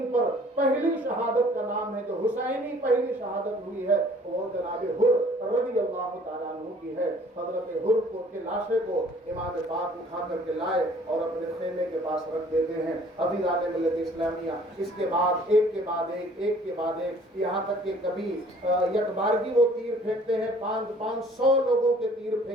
پر پہلی شہادت کا نام ہے جو حسینی پہلی شہادت ہوئی ہے، وہ جناب حر رضی اللہ تعالیٰ عنہ کی ہے۔ حضرت حر کو کے لاشے کو امام پاک اٹھا کر کے لائے اور اپنے خیمے کے پاس رکھ دیتے ہیں۔ عزیزان ملت اسلامیہ، اس کے بعد ایک کے بعد ایک، یہاں تک کہ کبھی یک بارگی وہ تیر پھینکتے ہیں، 500 لوگوں کے تیر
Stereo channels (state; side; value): normal; both; correlation 0.55